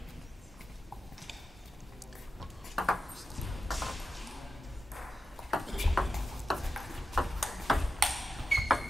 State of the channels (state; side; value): normal; both; correlation 0.90